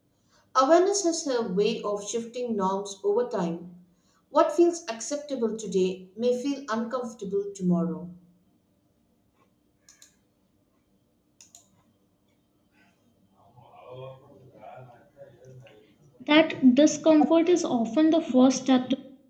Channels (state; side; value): identical; both; correlation 1.00